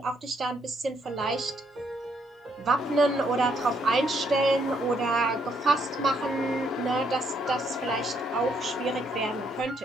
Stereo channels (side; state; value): both; normal; correlation 0.73